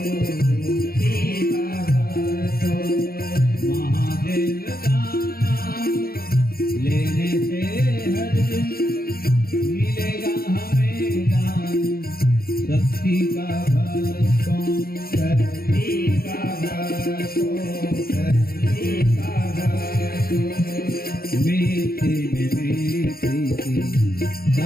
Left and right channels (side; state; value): right; late; 0.44 ms